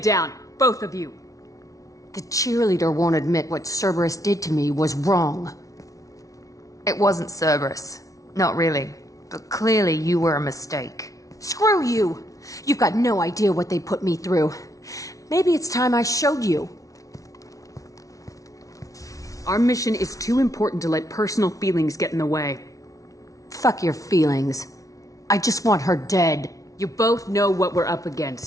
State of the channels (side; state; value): right; late; 0.17 ms